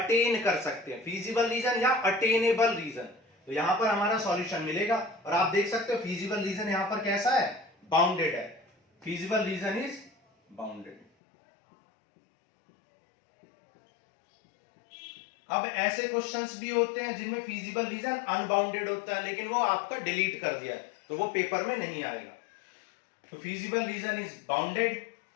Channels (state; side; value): drops out; right; at 11.1 s